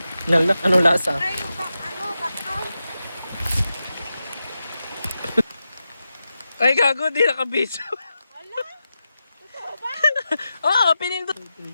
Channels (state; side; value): inverted; both; correlation -0.90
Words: Nalak, ano lasa? Ay, yung bakal. Ay, gago, di nakabidyo. Ala, totoo ba? Oo, pinindot.